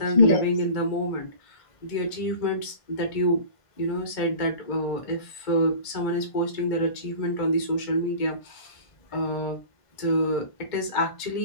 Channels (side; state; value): right; late; 1.5 ms